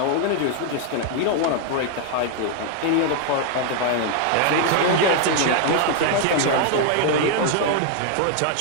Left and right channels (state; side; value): different; both; correlation 0.00